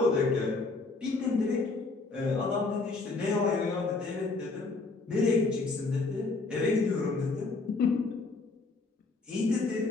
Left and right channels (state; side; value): quieter; right; 3.7 dB